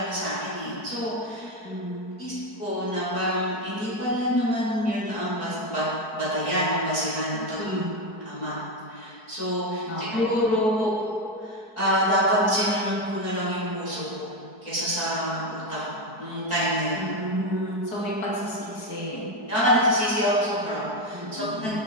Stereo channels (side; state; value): right; late; 4.6 ms